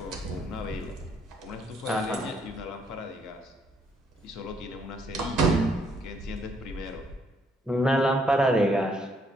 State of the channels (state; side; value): normal; both; correlation 0.70